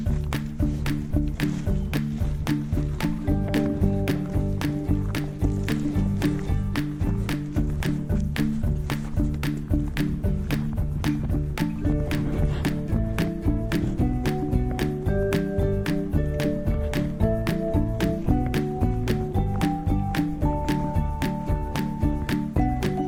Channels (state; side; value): identical; both; correlation 1.00